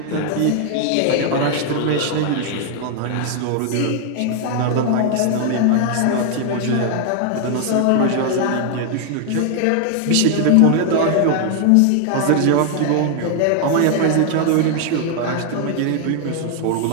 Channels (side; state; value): both; different; correlation 0.00